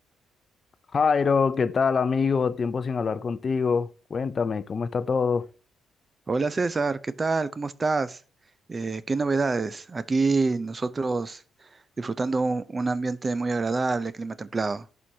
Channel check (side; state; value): both; normal; correlation 0.87